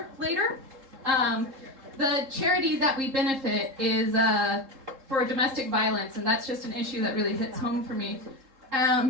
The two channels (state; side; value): late; left; 3.7 ms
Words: later. The charity that we benefit is for domestic violence, and that's just an issue that really hits home for me.